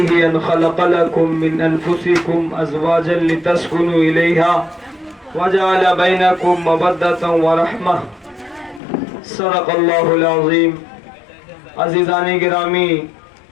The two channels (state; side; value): drops out; right; at 8.8 s